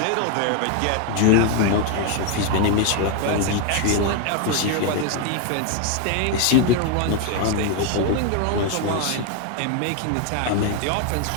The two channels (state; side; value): different; both; correlation 0.01